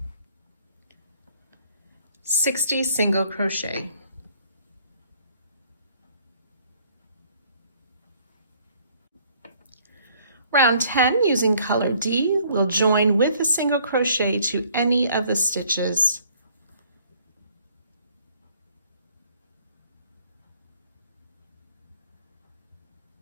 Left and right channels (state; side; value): inverted; both; correlation -0.61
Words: 60 single crochet. Round 10, using color D, we'll join with a single crochet to any of the stitches.